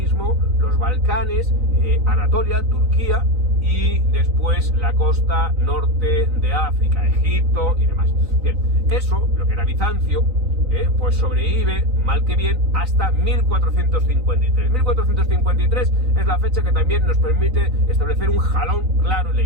los Balcanes, Anatolia, Turquía y después la costa norte de África, Egipto y demás. Bien, eso, lo que era Bizancio, pues sobrevive, mal que bien, hasta 1453. 1453 es la fecha que también nos permite establecer un jalón claro en la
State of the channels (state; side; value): late; left; 3.9 ms